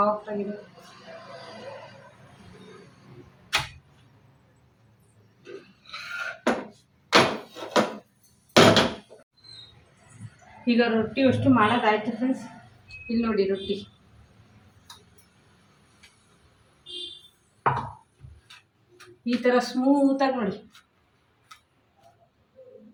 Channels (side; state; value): both; identical; correlation 1.00